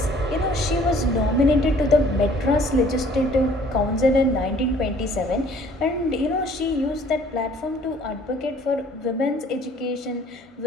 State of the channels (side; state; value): both; normal; correlation 0.56